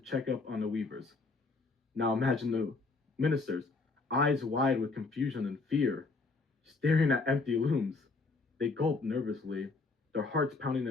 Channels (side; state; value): right; quieter; 3.8 dB